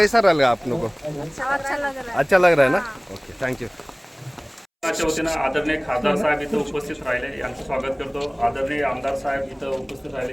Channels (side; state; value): both; identical; correlation 1.00